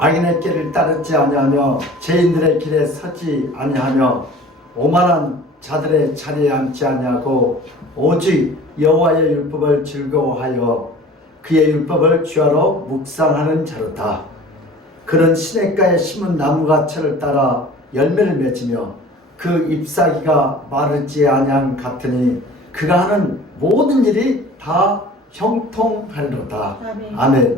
길을 따르지 아니하며 죄인들의 길에 서지 아니하며 오만한 자들의 자리에 앉지 아니하고 오직 여호와의 율법을 즐거워하여 그의 율법을 주야로 묵상하는 자로다. 그는 시냇가에 심은 나무가철을 따라 열매를 맺으며 그 잎사귀가 마르지 아니함 같으니 그가 하는 모든 일이 다 형통하리로다. 아멘.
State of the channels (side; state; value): both; normal; correlation 0.44